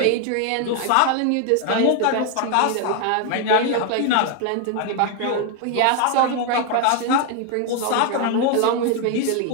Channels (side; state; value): both; different; correlation 0.00